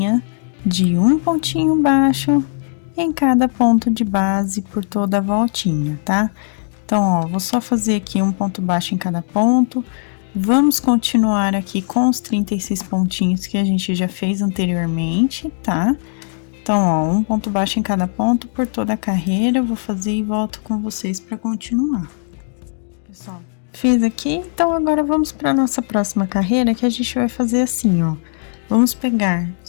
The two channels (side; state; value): right; silent; digital silence